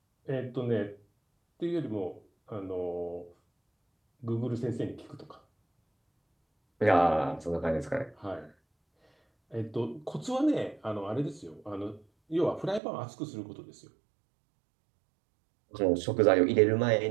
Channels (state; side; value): drops out; left; at 12.8 s